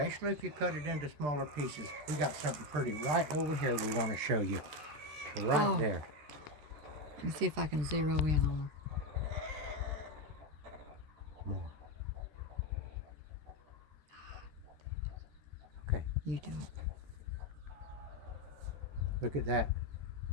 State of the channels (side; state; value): left; late; 13 ms